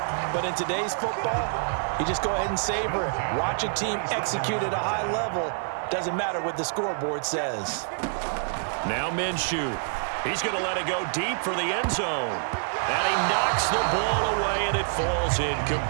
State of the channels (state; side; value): silent; left; digital silence